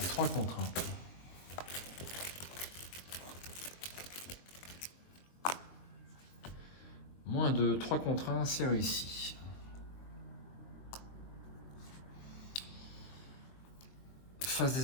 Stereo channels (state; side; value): late; right; 22 ms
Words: à 3 contre 1. -2, 3 contre 1, c'est réussi. Phase